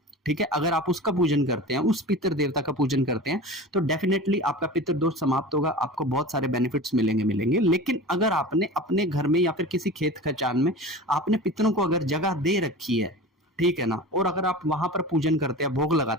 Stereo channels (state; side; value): normal; both; correlation 0.34